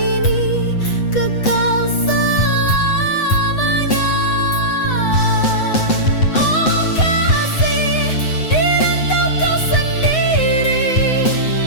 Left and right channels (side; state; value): right; late; 7.9 ms